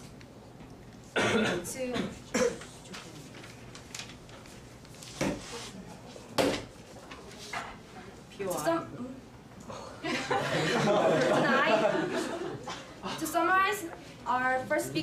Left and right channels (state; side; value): identical; both; correlation 1.00